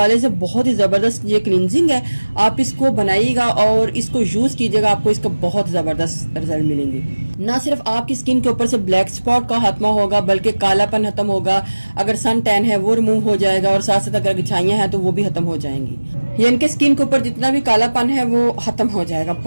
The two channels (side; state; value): both; inverted; correlation -1.00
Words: से बहुत ही जबरदस्त ये क्लींजिंग है। आप इसको बनाइएगा और इसको यूज कीजिएगा, आपको इसका बहुत जबरदस्त रिजल्ट मिलेंगे। ना सिर्फ आपकी स्किन के ऊपर से ब्लैक स्पॉट का खात्मा होगा बल्कि कालापन खत्म होगा, अगर सन टैन है वो रिमूव हो जाएगा और साथ साथ अगर घिछाइयां हैं तो वो भी खत्म हो जाएंगी। यानी कि स्किन के ऊपर जितना भी कालापन है वो खत्म हो जाएगा।